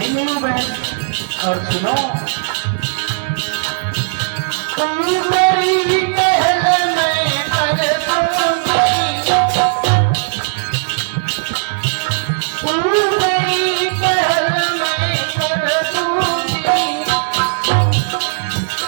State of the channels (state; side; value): silent; left; 55 dB below the other